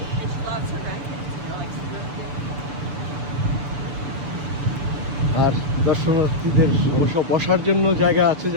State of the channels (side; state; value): left; late; 6.8 ms